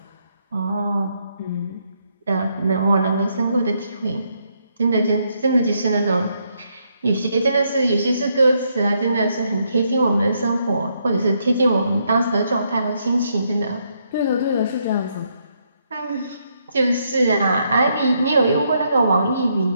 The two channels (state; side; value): inverted; both; correlation -0.76